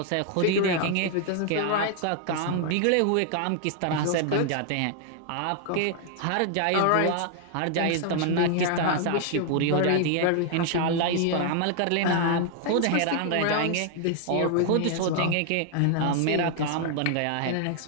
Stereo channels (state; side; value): different; both; correlation 0.00